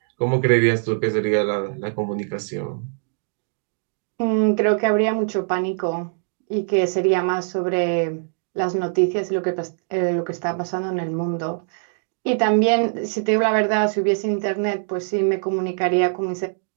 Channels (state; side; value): silent; left; digital silence